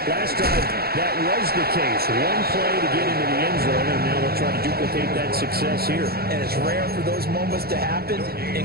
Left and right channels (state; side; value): late; left; 0.45 ms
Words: last drive, that was the case. One play to get into the end zone, and now they'll try to duplicate that success here. And it's rare for those moments to happen.